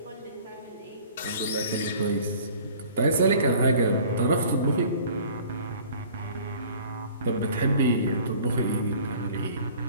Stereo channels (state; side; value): inverted; both; correlation -0.49